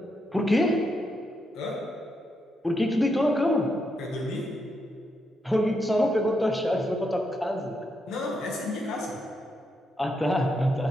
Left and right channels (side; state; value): both; normal; correlation 0.81